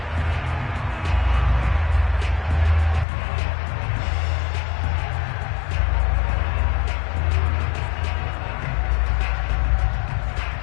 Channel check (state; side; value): drops out; right; at 3.1 s